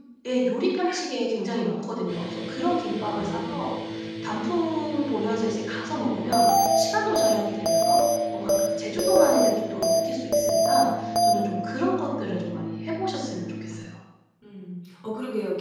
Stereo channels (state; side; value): identical; both; correlation 1.00